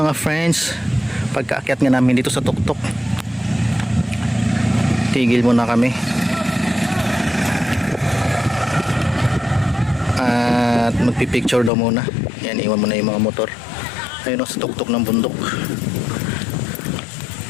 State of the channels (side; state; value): right; drops out; at 11.7 s